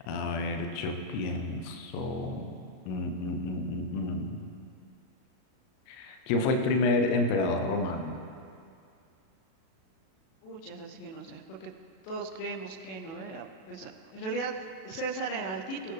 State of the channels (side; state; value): right; late; 38 ms